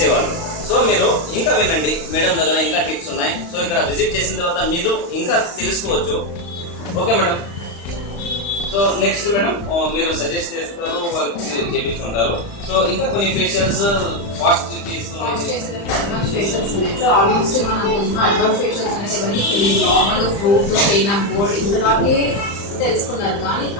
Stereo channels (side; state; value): right; late; 35 ms